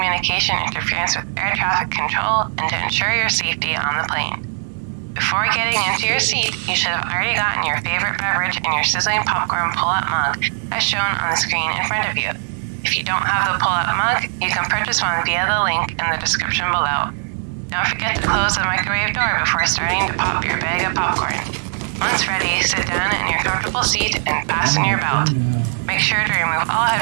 interference with air traffic control and to ensure your safety on the plane. Before getting into your seat, you should have already gotten your favorite beverage in your sizzling popcorn pull-up mug, as shown on the screen in front of you. If you don't have the pull-up mug, you can purchase one via the link in the description below. Don't forget to close the microwave door before starting to pop your bag of popcorn. Once ready, sit down in your comfortable seat and fasten your belt. Make sure to remove all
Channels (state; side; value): silent; left; 65 dB below the other